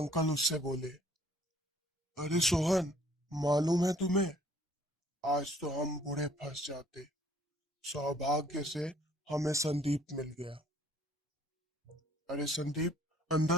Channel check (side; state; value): both; normal; correlation 0.59